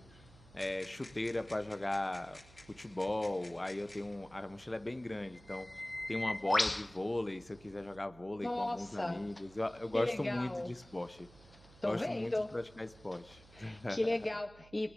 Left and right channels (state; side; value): noise; right; hum, 22 dB below the sound